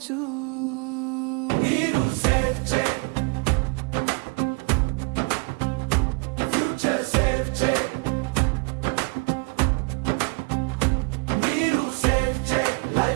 నీరు సేవ్ చేయి, ఫ్యూచర్ సేవ్ చేయి. నీరు సేవ్ చేయి,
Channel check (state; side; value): quieter; left; 32.6 dB